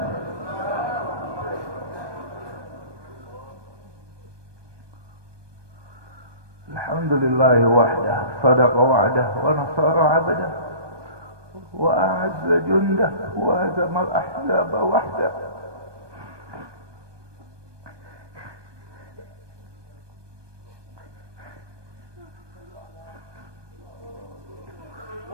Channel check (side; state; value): left; late; 1.2 ms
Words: Alhamdulillahi wahdah, sadaqa wa'dah, wa nasara 'abdah, wa a'azza jundah, wa hazama al-ahzaba wahdah.